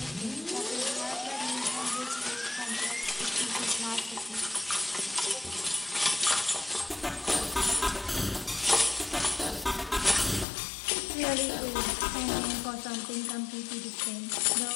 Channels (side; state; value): right; drops out; at 10.5 s